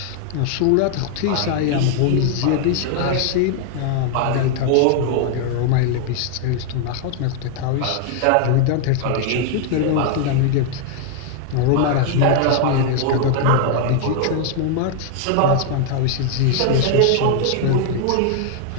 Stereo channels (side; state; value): both; different; correlation 0.00